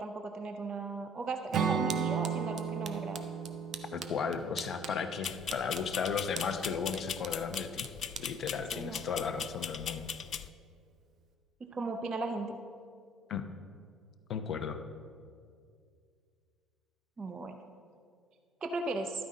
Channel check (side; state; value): both; normal; correlation 0.55